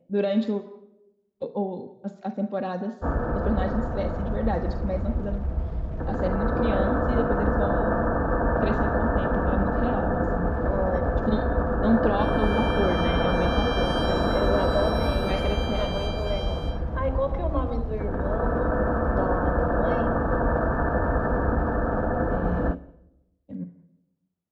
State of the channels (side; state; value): both; identical; correlation 1.00